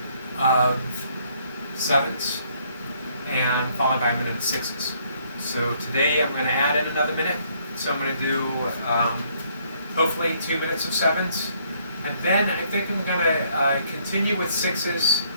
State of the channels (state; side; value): inverted; both; correlation -0.67